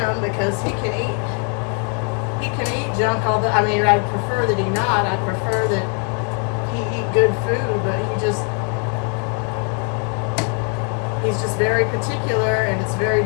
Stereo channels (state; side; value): quieter; right; 38.6 dB